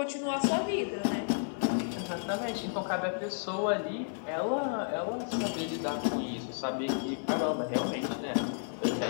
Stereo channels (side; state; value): right; silent; digital silence